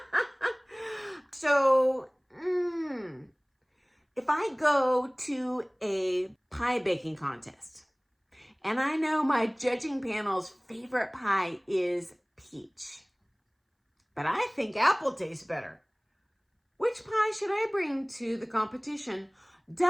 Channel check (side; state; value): both; identical; correlation 1.00